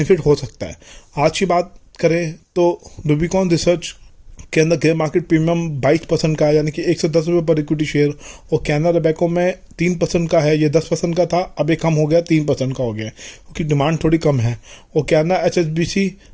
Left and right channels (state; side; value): identical; both; correlation 1.00